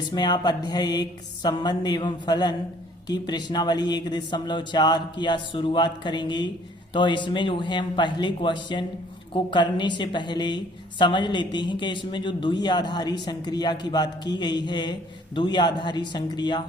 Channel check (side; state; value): both; normal; correlation 0.58